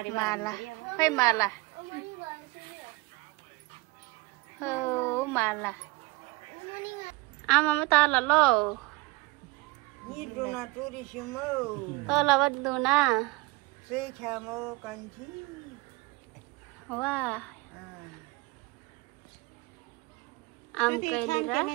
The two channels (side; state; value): left; quieter; 24.7 dB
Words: माला खै माला हो माला आमामा तल लो तल बद्दुना वा आम